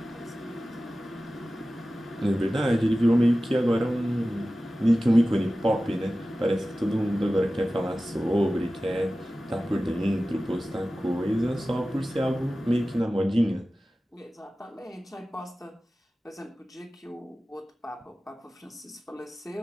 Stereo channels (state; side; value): normal; both; correlation 0.95